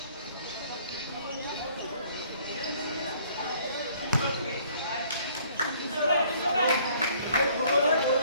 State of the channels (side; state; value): both; inverted; correlation -0.59